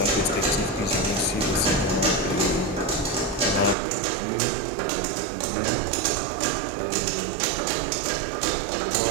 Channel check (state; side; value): drops out; left; at 3.8 s